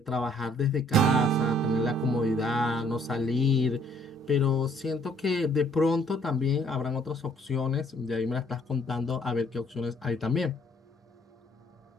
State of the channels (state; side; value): normal; both; correlation 0.63